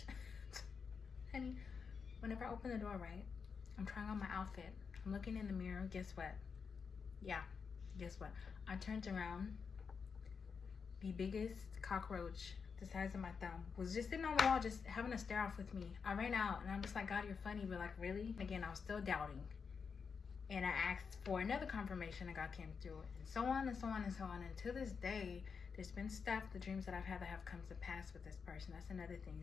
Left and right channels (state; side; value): quieter; right; 5.8 dB